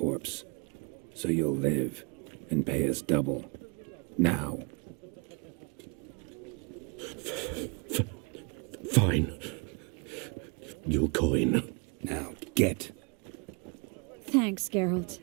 So you'll live and pay us double. Now. Fine. Your coin. Now, get. Thanks, Geralt.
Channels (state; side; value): quieter; left; 34.3 dB